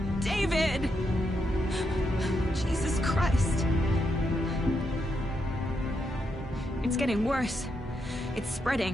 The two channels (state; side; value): normal; both; correlation 0.82